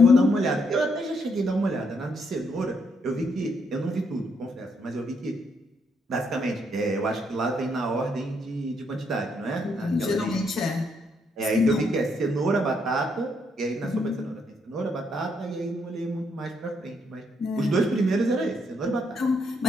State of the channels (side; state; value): both; normal; correlation 0.75